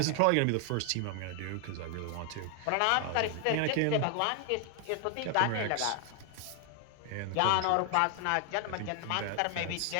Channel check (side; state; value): both; different; correlation 0.00